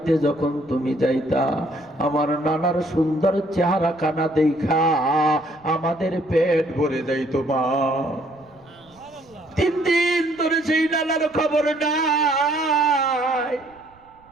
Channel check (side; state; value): right; noise; rumble, 30 dB below the sound